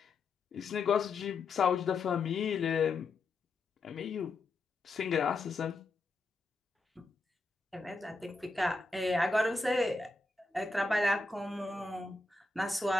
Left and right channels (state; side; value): quieter; right; 3.5 dB